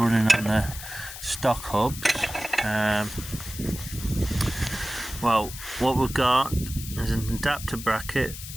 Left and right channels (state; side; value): noise; left; hiss, 11 dB below the sound